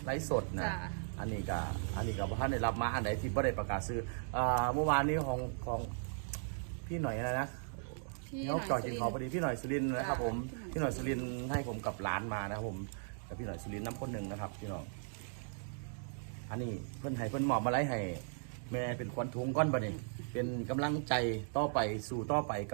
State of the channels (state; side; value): silent; left; digital silence